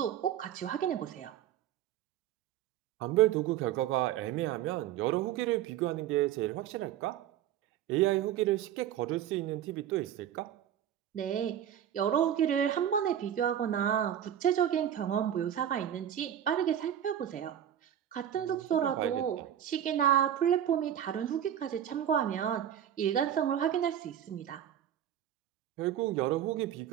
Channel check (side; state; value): left; quieter; 10.5 dB